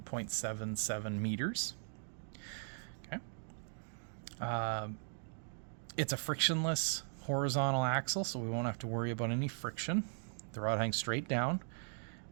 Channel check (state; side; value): silent; left; digital silence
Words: 0.77 meters. Okay. It's a frictionless horizontal axle, so we won't have to worry about any friction. The rod hangs straight down